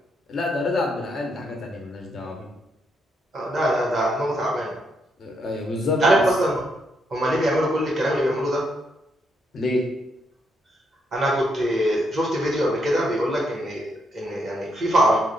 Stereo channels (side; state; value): both; normal; correlation 0.77